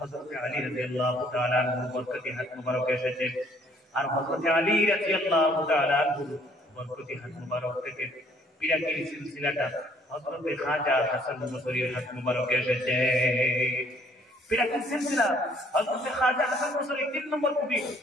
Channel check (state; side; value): normal; both; correlation 0.62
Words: আলী রাদিয়াল্লাহু তাআলা আনহুর বরকতি হাত মুবারক এসেছে আর হযরত আলী রাদিয়াল্লাহু তাআলা আনহুর বরকতি হাত মুবারক থেকে পিরাকির সিলসিলাটা হযরত খাজা হাসান বসরীর হাত মুবারক এসেছে পিরাকির সিলসিলা হযরত খাজা হাসান বসরী 3 নম্বর কুটি